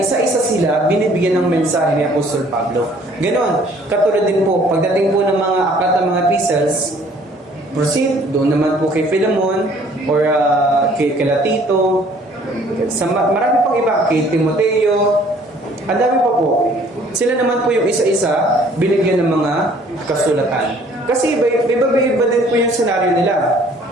isa-isa sila binibigyan ng mensahe ni Apostol Pablo. Ganon, katulad din po, pagdating po ng mga aklat ng mga epistles, proceed, doon naman po kay Philemon, or kay Tito, sa marami pang iba, kay Timoteo, ang dami pa po. Sila naman po yung isa-isa binigyan ng mga kasulatan. Kasi iba din po yung senaryo nila.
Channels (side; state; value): both; normal; correlation 0.57